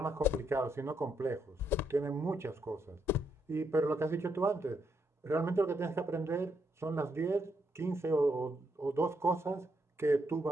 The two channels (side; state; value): both; normal; correlation 0.78